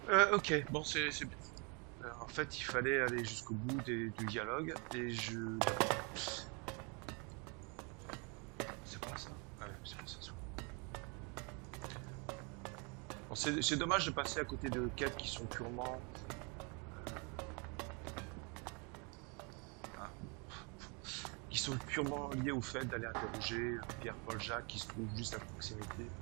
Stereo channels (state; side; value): quieter; left; 32.8 dB